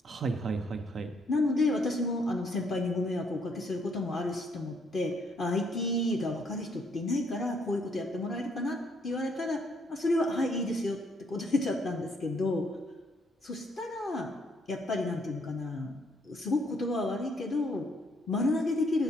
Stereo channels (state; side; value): normal; both; correlation 0.70